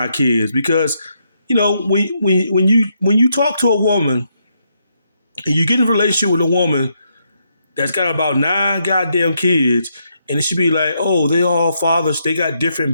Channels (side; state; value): both; inverted; correlation -0.78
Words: kids because, when you talk to a woman and you get in a relationship with a woman that's got about 9 goddamn kids, and it should be like, oh, they all fathers, they got different